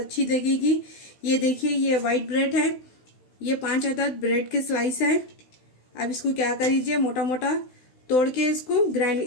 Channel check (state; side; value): late; right; 16 ms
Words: लगेगी। ये देखिए, ये वाइट ब्रेड है, ये 5 अदद ब्रेड के स्लाइस है। अब इसको क्या करिए, मोटा मोटा तोड़ के